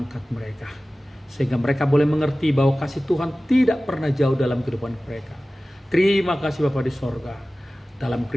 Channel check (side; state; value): both; normal; correlation 0.97